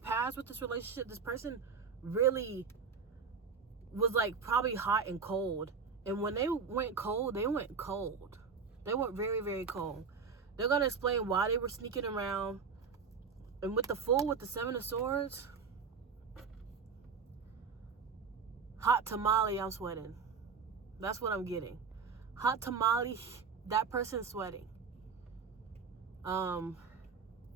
with this relationship, this person really was, like, probably hot and cold. And when they went cold, they went cold. They went very, very cold. They're going to explain why they were sneaking around. And with the Fool, with the 7 of Swords, hot tamale, I'm sweating. That's what I'm getting. Hot tamale, that person's sweating.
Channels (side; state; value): left; quieter; 5.6 dB